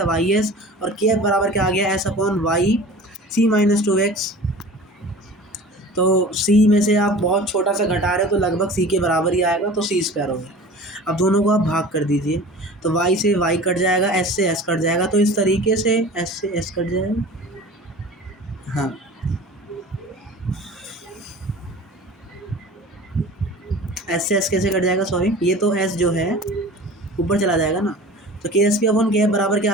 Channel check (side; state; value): both; normal; correlation 0.40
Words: YS, और KF बराबर क्या आ गया, S upon Y C minus 2x। तो C में से आप बहुत छोटा सा घटा रहे हो तो लगभग C के बराबर ही आएगा, तो C स्क्वायर हो गया। अब दोनों को आप भाग कर दीजिए, तो y से y कट जाएगा, s से s कट जाएगा, तो इस तरीके से s से s कट जाएगा। हाँ, s से s कैसे कट जाएगा, सॉरी, ये तो s जो है ऊपर चला जाएगा ना, तो KSP अपॉन KF बराबर क्या